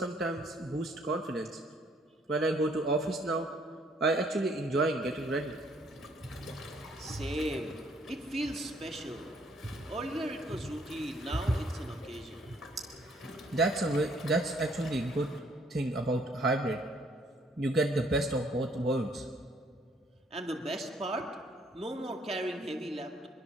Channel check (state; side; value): normal; both; correlation 0.64